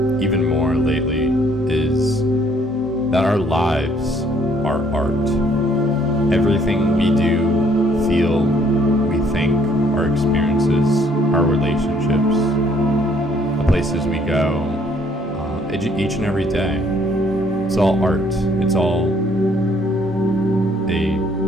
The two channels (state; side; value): normal; both; correlation 0.64